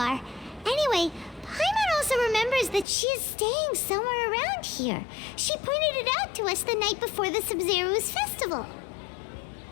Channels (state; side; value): drops out; right; at 2.9 s